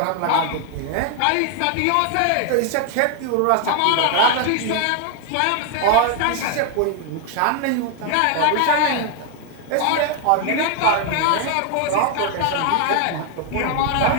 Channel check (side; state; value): both; different; correlation 0.01